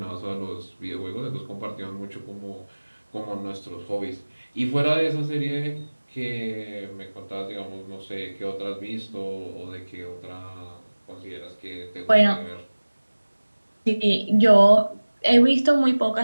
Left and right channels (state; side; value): inverted; both; correlation -1.00